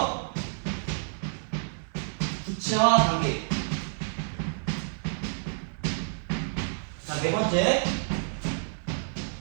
구체화 단계. 자, 네 번째,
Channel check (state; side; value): silent; left; digital silence